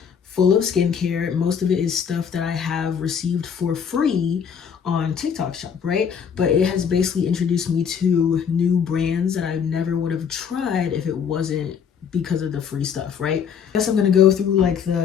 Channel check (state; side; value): quieter; right; 7.3 dB